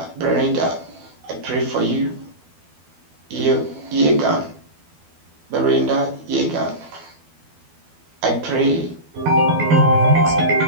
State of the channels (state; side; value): late; left; 12 ms